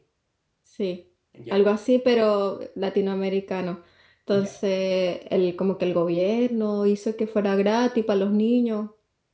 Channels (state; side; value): identical; both; correlation 1.00